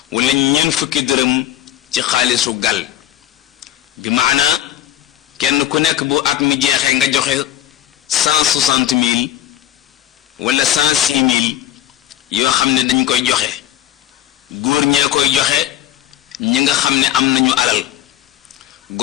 wala ñeent fukki dërëm ci xaalisu gal bi maana kenn ku nekk bu at mi jeexee nga joxe 160 000 wala 106 000 yoo xam ne dañ koy joxe góor ñee koy joxe ñi nga xam ne am nañu alal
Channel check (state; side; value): quieter; right; 12.6 dB